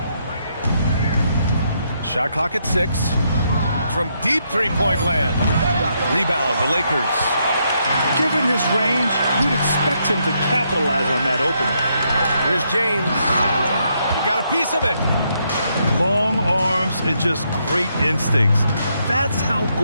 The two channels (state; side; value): inverted; both; correlation -0.77